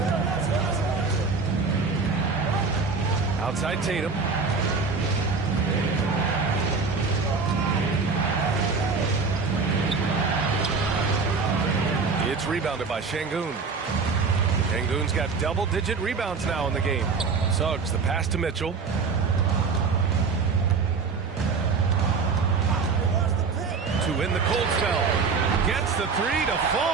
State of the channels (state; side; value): quieter; left; 4.8 dB